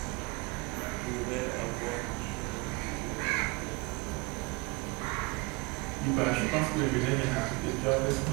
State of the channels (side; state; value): left; quieter; 25.0 dB